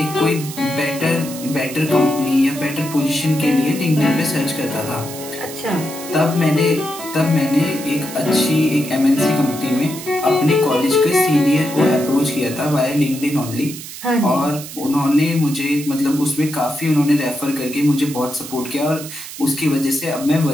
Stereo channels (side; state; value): right; noise; hiss, 12 dB below the sound